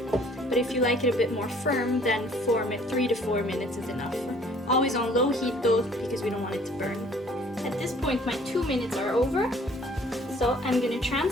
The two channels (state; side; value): normal; both; correlation 0.56